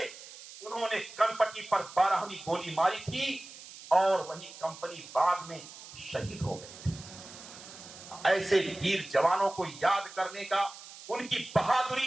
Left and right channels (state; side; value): noise; right; hiss, 16 dB below the sound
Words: उन्होंने कनपटी पर 12वीं गोली मारी थी, और वहीं कंपनी बाग में शहीद हो गए थे। ऐसे वीर जवानों को याद करने का, उनकी